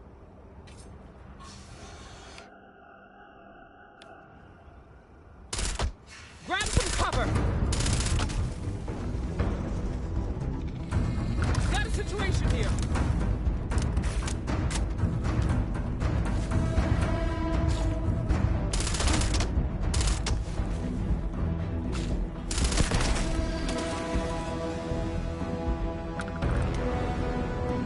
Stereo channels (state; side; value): identical; both; correlation 1.00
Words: Grab some cover! Got a situation here!